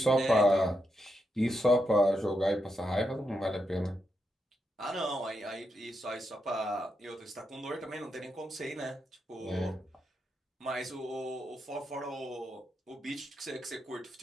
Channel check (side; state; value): both; normal; correlation 0.83